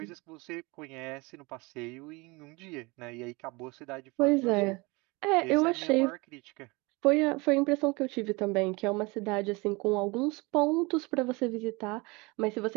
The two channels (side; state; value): left; quieter; 25.8 dB